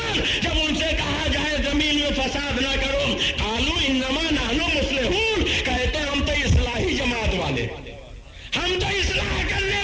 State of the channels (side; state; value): both; identical; correlation 1.00